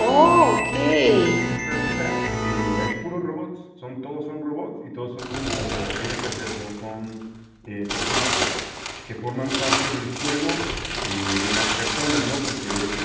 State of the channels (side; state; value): both; identical; correlation 1.00